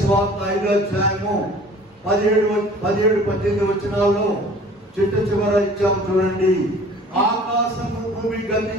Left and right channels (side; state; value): both; normal; correlation 0.48